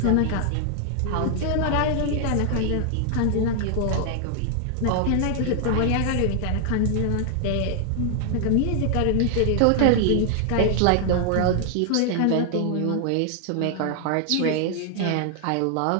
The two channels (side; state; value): both; different; correlation 0.00